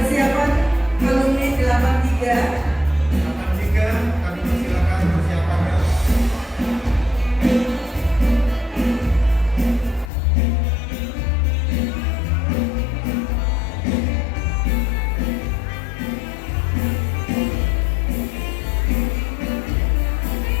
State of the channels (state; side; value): drops out; right; at 10.1 s